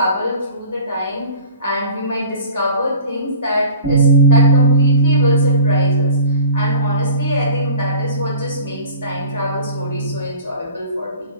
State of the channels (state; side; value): inverted; both; correlation -0.43